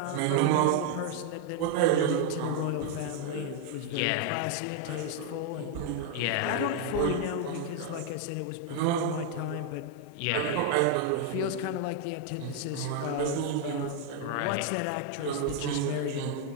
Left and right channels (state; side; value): different; both; correlation 0.00